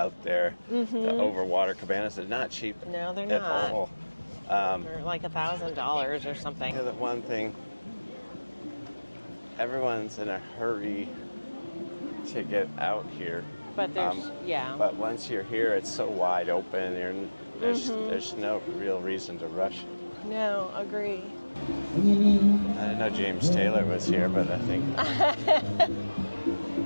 there, the overwater cabanas. They're not cheap. No, they're at not. all. They're like $1,000 or something. The one thing, everyone's in a hurry to get out here. But there's, But once you're here, it's so wide open. There's no real reason to rush. No, agree. I didn't know James Taylor was here, but I think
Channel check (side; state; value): both; inverted; correlation -1.00